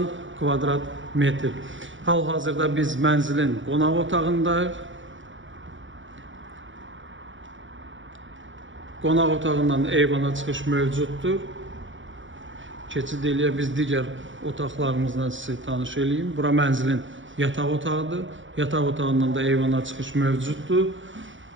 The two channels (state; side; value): late; left; 0.56 ms